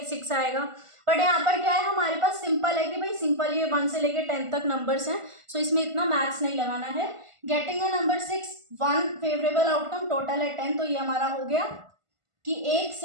6 आएगा। बट यहाँ पर क्या है, हमारे पास सिंपल है कि भाई सिंपल ये 1 से लेके 10 तक नंबर्स हैं, सो इसमें इतना मैथ्स नहीं लगाना है। Getting a number 6, 1 favourable outcome, total है 10, तो ये हमारा हो गया कि एक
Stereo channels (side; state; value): left; late; 1.5 ms